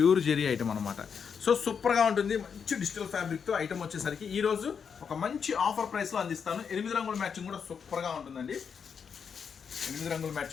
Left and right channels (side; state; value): right; quieter; 6.6 dB